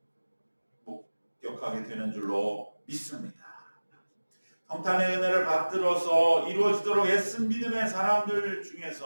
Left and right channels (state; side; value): inverted; both; correlation -1.00